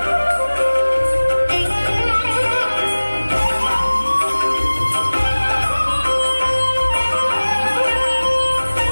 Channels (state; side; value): inverted; both; correlation -1.00